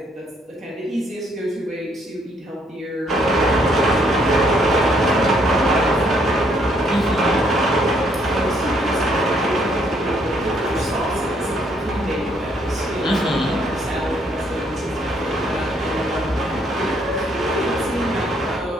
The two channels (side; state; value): both; normal; correlation 0.69